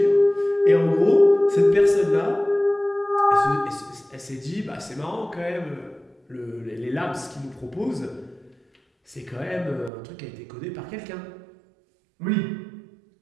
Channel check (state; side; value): drops out; left; at 9.9 s